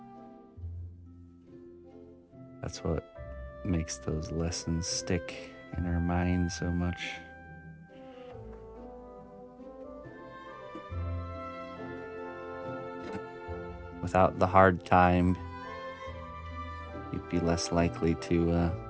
That's what makes those lessons stick in our mind so much. Without the hard time, you'd be less likely to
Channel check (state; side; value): identical; both; correlation 1.00